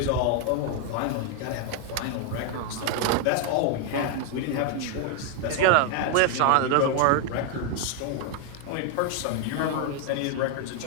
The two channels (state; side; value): different; both; correlation 0.01